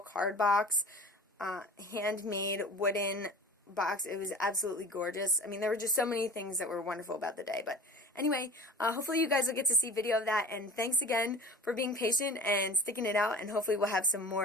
box, handmade wooden box. It was absolutely gorgeous. I mean, there were just so many things that were wonderful about the day. But anyway, hopefully you guys will get to see video of that, and thanks again for being patient and sticking it out, and hopefully we'll have some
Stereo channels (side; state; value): both; normal; correlation 0.39